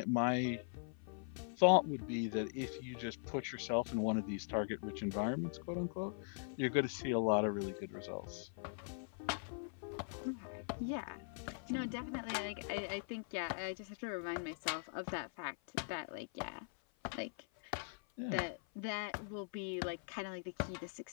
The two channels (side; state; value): right; silent; 50 dB below the other